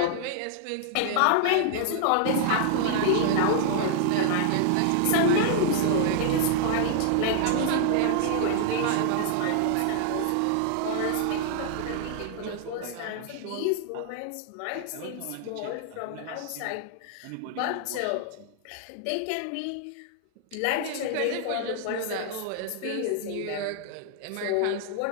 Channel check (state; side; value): different; both; correlation 0.00